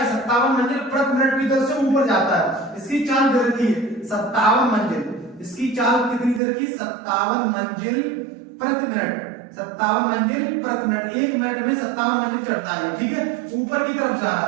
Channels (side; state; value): left; drops out; at 6.4 s